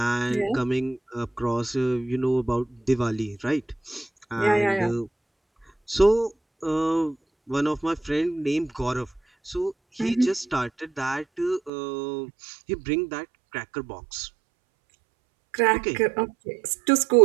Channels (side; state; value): left; drops out; at 11.7 s